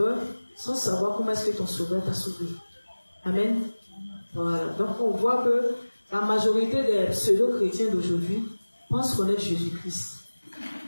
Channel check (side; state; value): both; inverted; correlation -1.00